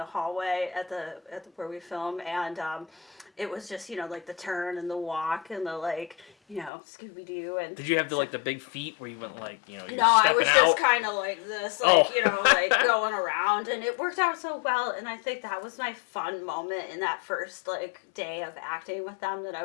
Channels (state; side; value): drops out; right; at 6.7 s